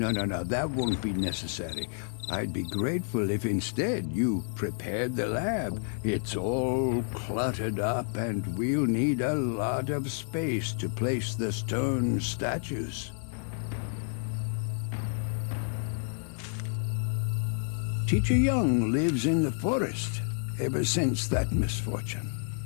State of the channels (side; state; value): right; silent; 58 dB below the other